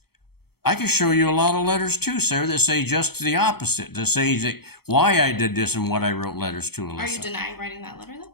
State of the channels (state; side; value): late; right; 0.95 ms